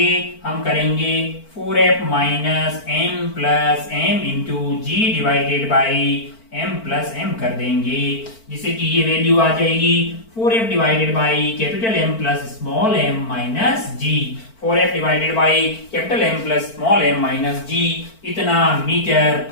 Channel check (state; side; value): late; right; 4.5 ms